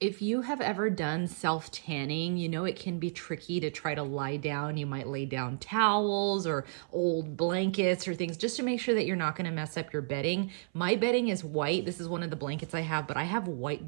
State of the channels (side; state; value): left; silent; 56 dB below the other